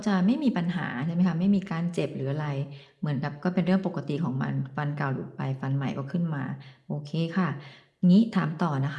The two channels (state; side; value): identical; both; correlation 1.00